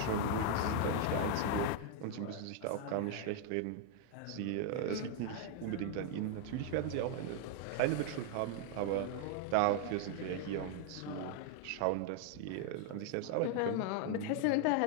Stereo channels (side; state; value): both; different; correlation 0.00